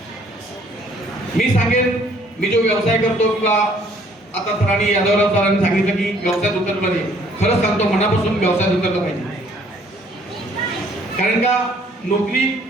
मी सांगेन, मी जो व्यवसाय करतो किंवा आता सरांनी यादवराव सरांनी सांगितलं की व्यवसायात उतरलं पाहिजे. खरंच सांगतो, मनापासून व्यवसायात उतरलं पाहिजे. कारण का नोकरी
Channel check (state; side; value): normal; both; correlation 0.61